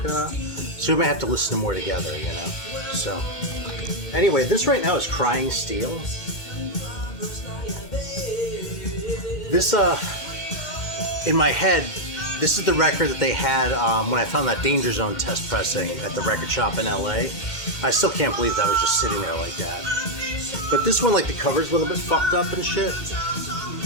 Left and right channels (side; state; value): right; late; 2.1 ms